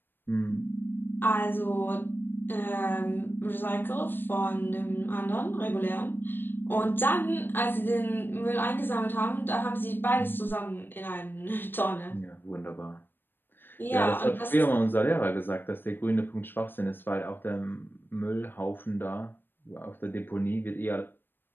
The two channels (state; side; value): late; right; 0.097 ms